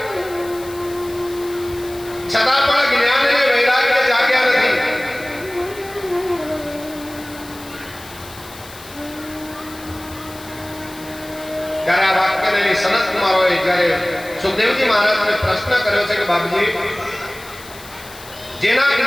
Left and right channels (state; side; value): noise; left; hiss, 18 dB below the sound